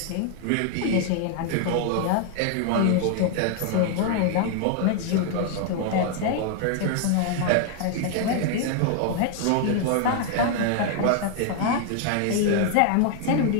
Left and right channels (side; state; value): both; different; correlation 0.00